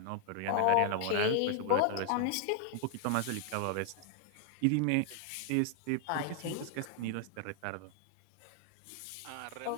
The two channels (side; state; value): both; different; correlation 0.00